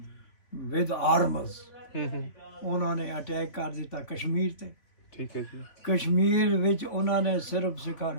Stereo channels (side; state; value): right; late; 3.5 ms